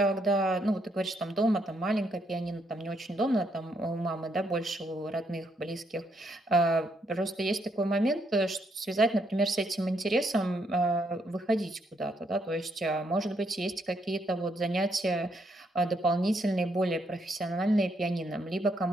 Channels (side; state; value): both; normal; correlation 0.75